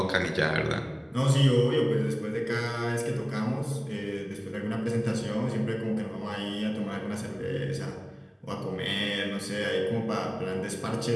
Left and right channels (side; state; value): both; identical; correlation 1.00